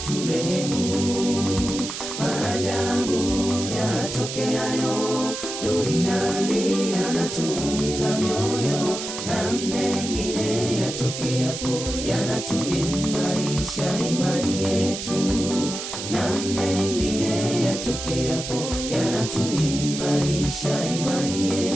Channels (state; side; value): noise; right; hiss, 7 dB below the sound